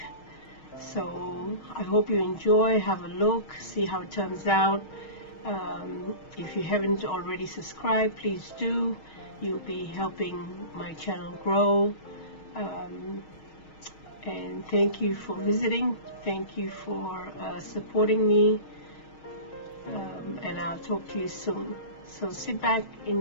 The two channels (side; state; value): right; late; 6.4 ms